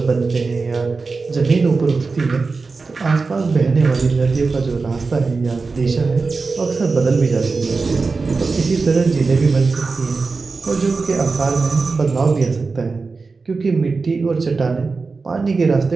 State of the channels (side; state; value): left; quieter; 4.2 dB